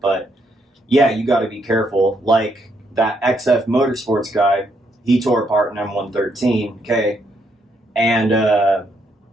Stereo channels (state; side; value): normal; both; correlation 0.75